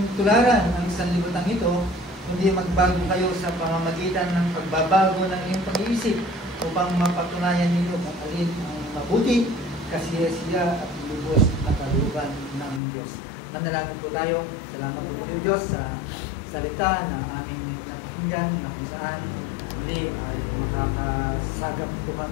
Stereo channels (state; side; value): drops out; right; at 12.8 s